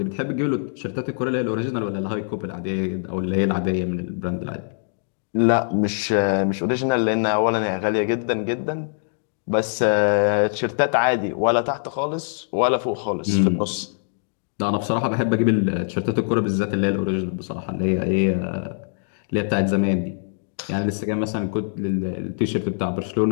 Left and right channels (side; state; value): right; silent; digital silence